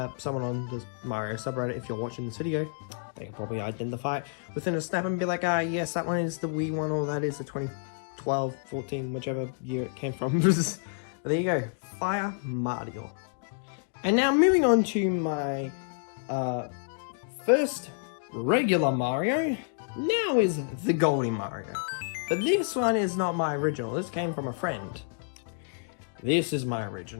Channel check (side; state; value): right; silent; digital silence